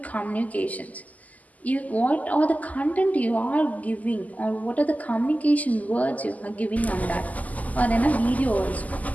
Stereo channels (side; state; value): right; late; 0.077 ms